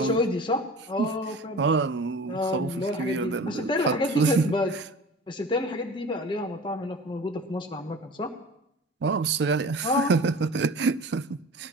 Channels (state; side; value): normal; both; correlation 0.39